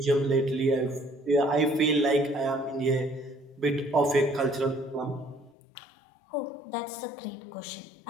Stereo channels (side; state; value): right; drops out; at 5.6 s